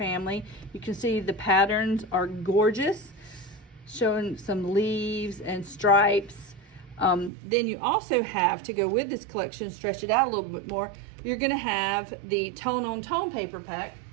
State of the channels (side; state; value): left; drops out; at 7.3 s